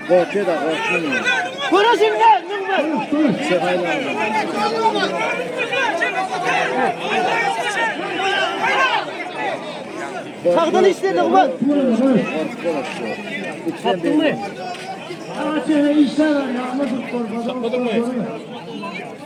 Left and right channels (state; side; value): identical; both; correlation 1.00